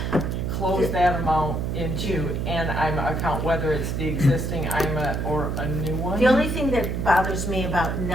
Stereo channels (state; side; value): noise; right; hum, 1 dB below the sound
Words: close that amount into an IMA account, whether it's the existing IMA or a new one. the only thing that bothers me about